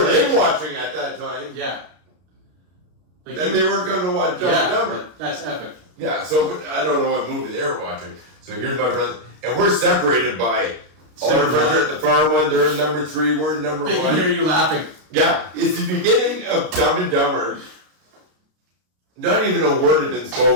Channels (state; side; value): late; left; 33 ms